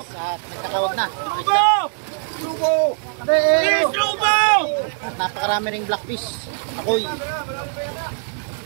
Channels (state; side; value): silent; left; 58 dB below the other